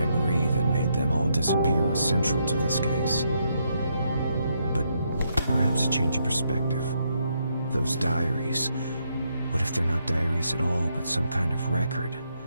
that made them all disappear was central to this case. But perhaps a change of perspective. Those diaries, what if they're not diaries at all, but some kind of record?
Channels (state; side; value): inverted; both; correlation -0.77